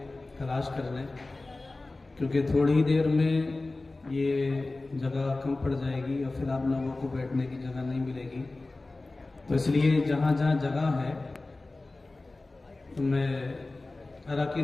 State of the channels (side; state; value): right; quieter; 3.2 dB